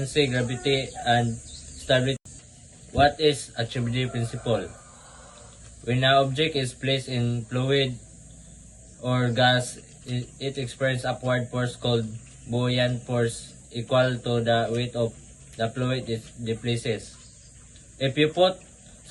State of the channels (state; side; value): identical; both; correlation 1.00